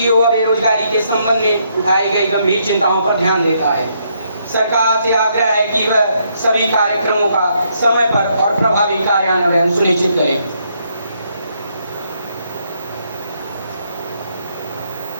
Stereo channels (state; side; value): inverted; both; correlation -0.74